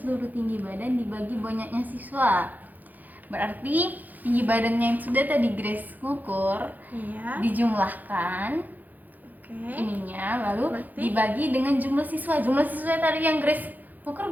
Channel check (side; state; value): left; late; 0.083 ms